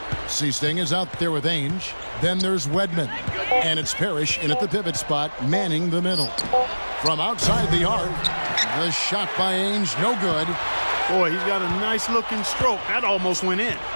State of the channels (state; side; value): inverted; both; correlation -1.00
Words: Seasting is out there with Ainge. Then there's Wedman. And it's Parrish in at the pivot spot, manning the middle. From outside the arc, the shot by Ainge, no good. Boy, he's got a nice-looking stroke. That almost went in.